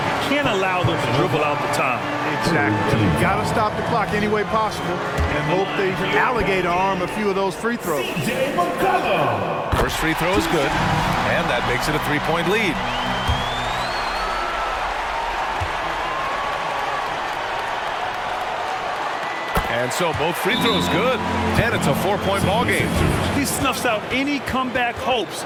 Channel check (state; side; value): identical; both; correlation 1.00